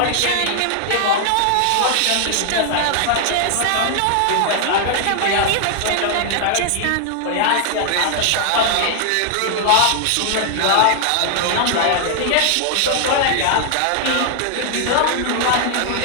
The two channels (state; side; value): different; both; correlation 0.00